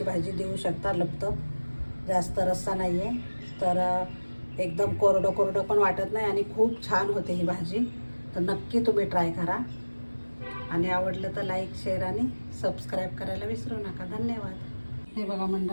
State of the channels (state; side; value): inverted; both; correlation -1.00